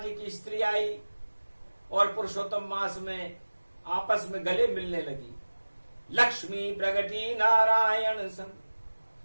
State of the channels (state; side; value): inverted; both; correlation -1.00